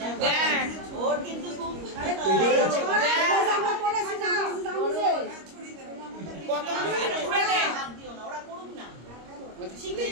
দেখ ওর কিন্তু খুব আমরা করেছি না, আমরা জানি যে কত জোরে দে। হাত দিও না, ওরা করুক না।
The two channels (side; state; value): left; late; 25 ms